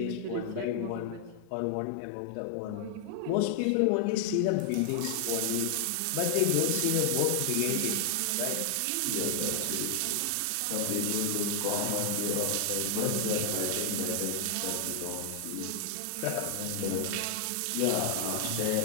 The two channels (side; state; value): both; different; correlation 0.00